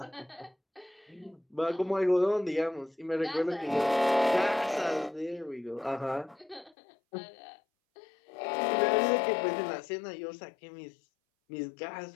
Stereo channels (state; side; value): drops out; right; at 6.8 s